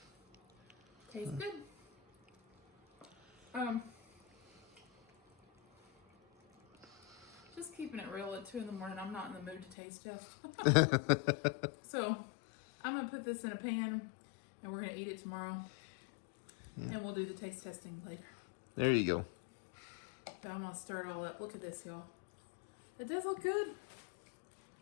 Tastes good. Just keeping it real at 2 in the morning. I'm not in the mood to taste test. So I'm gonna put this in a pan and we're gonna eat it tomorrow. Yeah. And we'll do the taste testing later. There you go. So I'm gonna stir it all up. Look at this, y'all. It does look good.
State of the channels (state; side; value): drops out; right; at 9.8 s